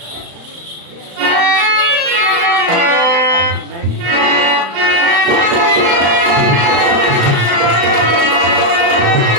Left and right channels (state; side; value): late; left; 35 ms